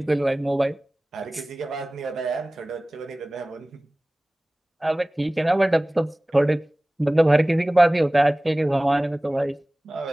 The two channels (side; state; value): both; normal; correlation 0.98